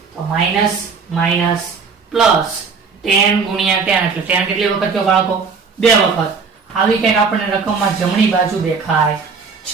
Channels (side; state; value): left; quieter; 5.2 dB